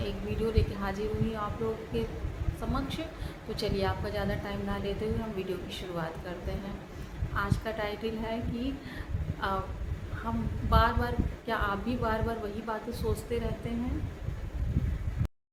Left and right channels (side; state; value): both; identical; correlation 1.00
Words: एक वीडियो लेके हाजिर हुई हूँ आप लोगों के समक्ष। तो चलिए, आपका ज़्यादा टाइम ना लेते हुए हम वीडियो की शुरुआत करते हैं। आज का टाइटल है कि अ, हम बार बार, क्या आप भी बार बार वही बातें सोचते रहते हैं?